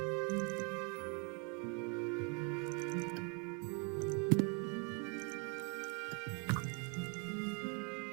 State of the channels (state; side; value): quieter; left; 34.2 dB